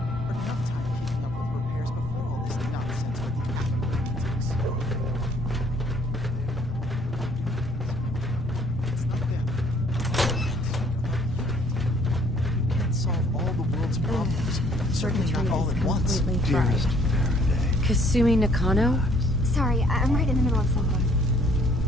Certainly not all at once. Dearest Faraday. Kasumi Nakano? Sorry, I'm right in the middle of something.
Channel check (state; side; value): normal; both; correlation 0.61